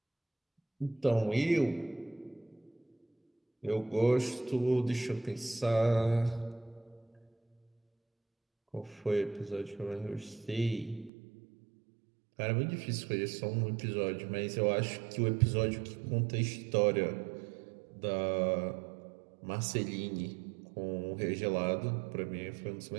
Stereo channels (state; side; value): drops out; left; at 11.1 s